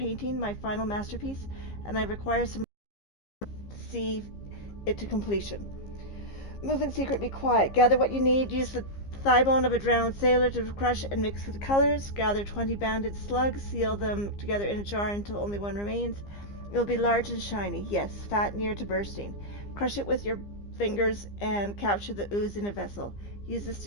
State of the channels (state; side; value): late; right; 15 ms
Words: my final masterpiece, and I require some to see it to completion. Move in secret, be quiet. Gather what you need. Use the thigh bone of a drowned sailor to crush and mix with the colors. Gather 20 banded slugs. Seal them together in a jar until only one remains. It will be large and shiny. Yes, fat near to bursting. Crush it with your fingers and capture the ooze in a vessel. Use this to